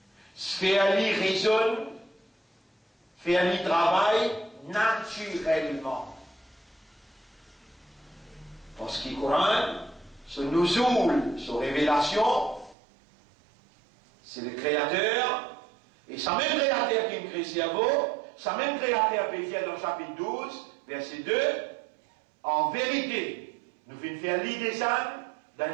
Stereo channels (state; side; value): drops out; left; at 12.8 s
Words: Faire lui raisonne, faire lui travail naturellement. Parce que le Coran, ce nouzoul, ce révélation, c'est le Créateur, et ce même Créateur qui crée le cerveau, ce même Créateur peut dire dans le chapitre 12, verset 2, en vérité, nous venons faire l'idée dans